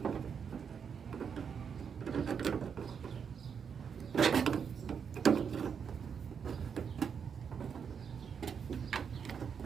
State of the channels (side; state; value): left; quieter; 6.9 dB